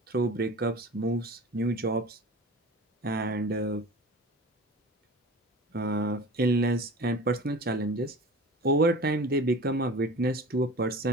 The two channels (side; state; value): both; normal; correlation 0.38